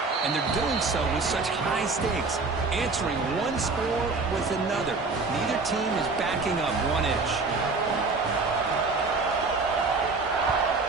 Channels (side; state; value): left; quieter; 4.0 dB